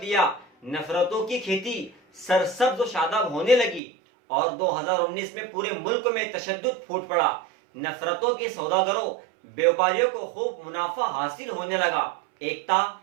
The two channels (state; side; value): drops out; left; at 3.8 s